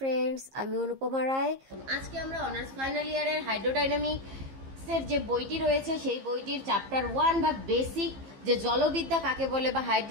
আমি অনুপমা রায়। আজকে আমরা অনার্স ফাইনাল ইয়ারের হাইড্রোডাইনামিক্সের যে বইটি রয়েছে সেই বইটির চ্যাপ্টার 1 বা বেসিক যে জলবিদ্যা কাকে বলে বা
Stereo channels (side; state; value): left; late; 15 ms